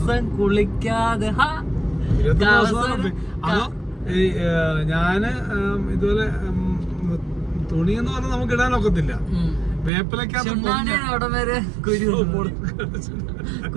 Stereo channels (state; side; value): drops out; left; at 9.9 s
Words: കുളിക്കാതെ ഞാന് ഇതുപോലെ തുണി എന്ന് പറഞ്ഞാൽ നമുക്ക് ഇടാനൊക്കത്തില്ല. വേപ്പിലക്കകത്ത് അവിടെ വരെ